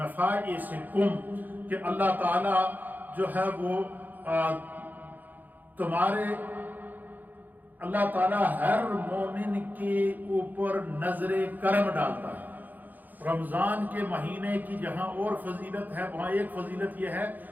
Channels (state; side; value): late; left; 0.084 ms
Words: کہ اللہ تعالی جو ہے وہ اللہ تعالیٰ ہر مومن کے اوپر نظر کرم ڈالتا ہے۔ رمضان کے مہینے کی جہاں اور فضیلت ہے وہاں ایک فضیلت یہ ہے